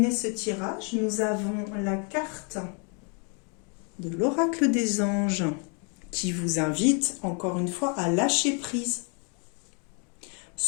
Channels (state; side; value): quieter; right; 37.4 dB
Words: ce tirage, nous avons la carte de l'oracle des anges qui vous invite encore une fois à lâcher prise.